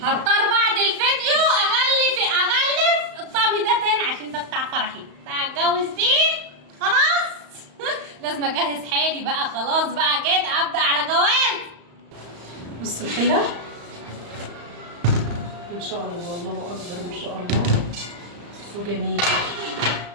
هضطر بعد الفيديو اغلف الطقم ده تاني عشان ده بتاع فرحي، بتاع الجوز دي خلاص. لازم اجهز حالي بقى، خلاص بقى كده ابدا على جواز. بصوا الحله ما شاء الله، الله اكبر ما شاء الله. بصوا جميل.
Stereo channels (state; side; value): late; left; 35 ms